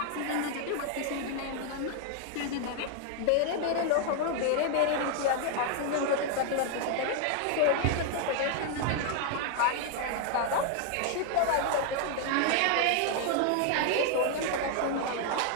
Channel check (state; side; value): different; both; correlation 0.00